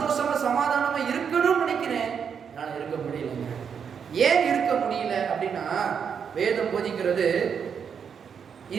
சமாதானமா இருக்கணும்னு நினைக்கிறேன் என்னால இருக்க முடியலங்க. ஏன் இருக்க முடியல அப்படின்னா வேதம் போதிக்கிறது,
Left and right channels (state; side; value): quieter; left; 7.1 dB